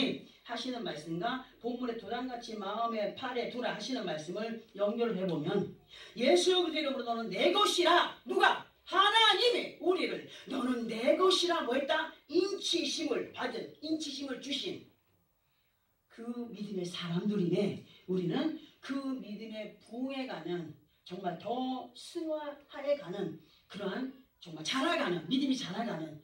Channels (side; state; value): both; identical; correlation 1.00